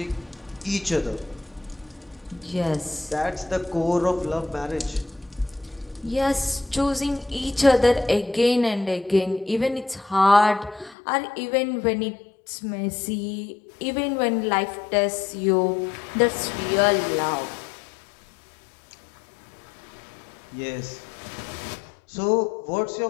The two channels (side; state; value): right; drops out; at 11.0 s